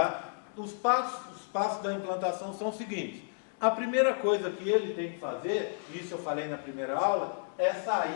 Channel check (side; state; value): right; silent; digital silence